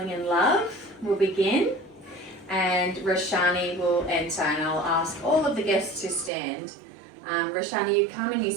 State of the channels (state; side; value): drops out; left; at 6.3 s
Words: in Love will begin, and Roshani will enter, and I'll ask all of the guests to stand. Roshani, you come and you